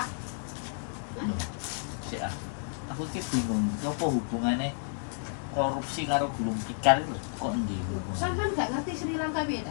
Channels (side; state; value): right; silent; digital silence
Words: Loh, sik ah. Aku ki bingung, apa hubungannya korupsi karo gulung tikar itu kok endi hubungannya? Sampean nggak ngerti Sri Lanka